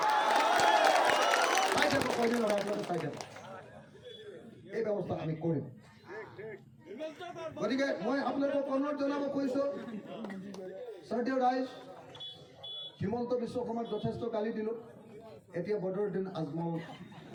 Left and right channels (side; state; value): both; identical; correlation 1.00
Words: চাই যাব, কয়দিন আপোনালোকে চাই যাব। এই ব্যৱস্থা আমি কৰিম। গতিকে মই আপোনালোকক অনুৰোধ জনাব কৈছোঁ, শ্ৰদ্ধেয় ৰাইজ, হিমন্ত বিশ্ব শৰ্মাক যথেষ্ট গালি দিলোঁ। এতিয়া বদৰুদ্দিন আজমল